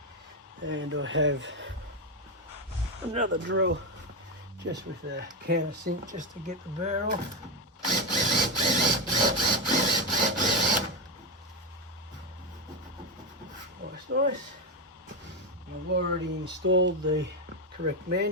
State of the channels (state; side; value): normal; both; correlation 0.10